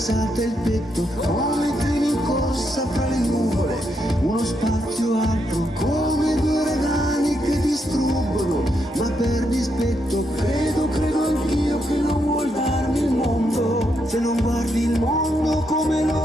il petto come treni in corsa fra le nuvole, uno spazio alto come due uragani che distruggono, ma per dispetto credo anch'io che non vuol darmi il mondo. Se non guardi il mondo come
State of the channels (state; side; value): normal; both; correlation 0.80